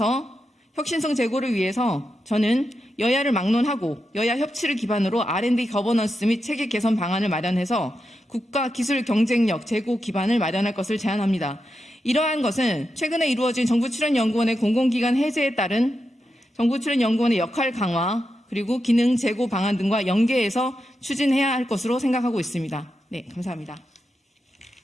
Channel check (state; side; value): normal; both; correlation 0.87